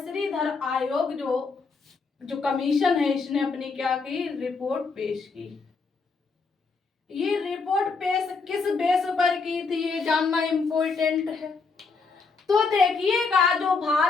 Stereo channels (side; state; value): right; quieter; 4.5 dB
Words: आयोग जो कमीशन है, इसने अपनी क्या की? रिपोर्ट पेश की। ये रिपोर्ट पेश किस बेस पर की थी, ये जानना इम्पोर्टेंट है। तो देखिएगा जो